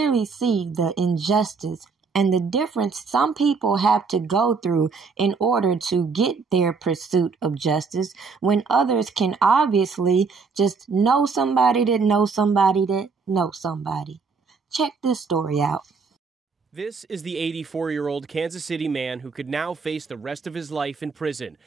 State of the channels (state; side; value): quieter; left; 4.9 dB